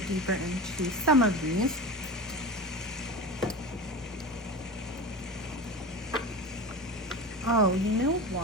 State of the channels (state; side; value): normal; both; correlation 0.29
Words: deeper into some of these. Oh, you know